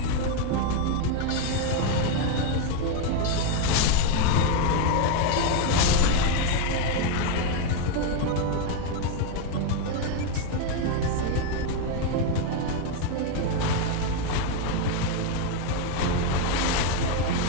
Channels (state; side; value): different; both; correlation 0.01